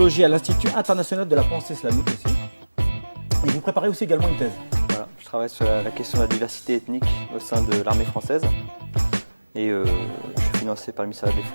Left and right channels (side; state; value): both; inverted; correlation -1.00